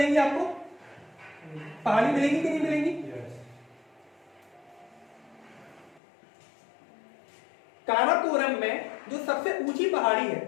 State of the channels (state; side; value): drops out; right; at 6.0 s